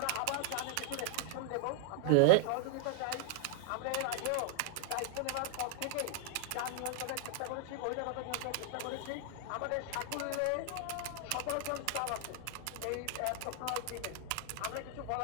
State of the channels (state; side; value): different; both; correlation 0.00